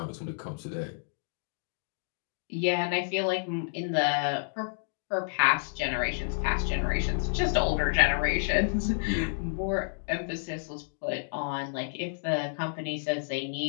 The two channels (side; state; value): right; silent; digital silence